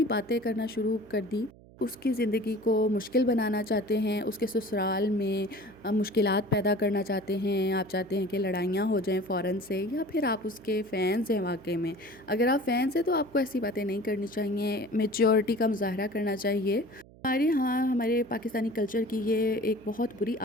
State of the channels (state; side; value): noise; right; hum, 23 dB below the sound